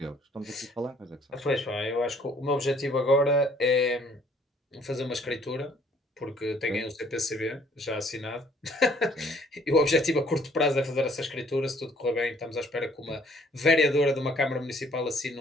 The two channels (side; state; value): both; normal; correlation 0.61